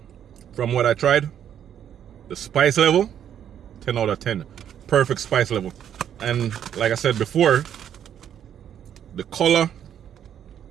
from what I tried, the spice level, 10 out of 10. Perfect spice level. And like I said before, the color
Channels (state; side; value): quieter; left; 9.5 dB